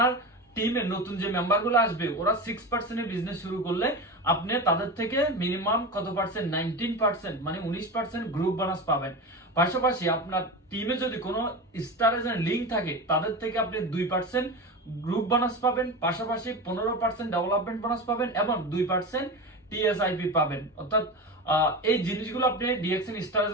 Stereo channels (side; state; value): both; normal; correlation 0.25